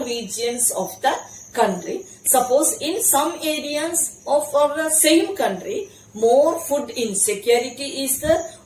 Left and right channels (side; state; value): both; identical; correlation 1.00